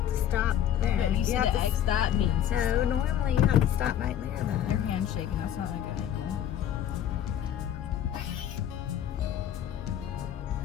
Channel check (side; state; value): right; quieter; 10.4 dB